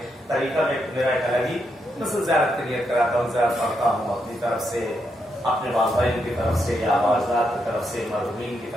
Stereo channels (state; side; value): normal; both; correlation 0.81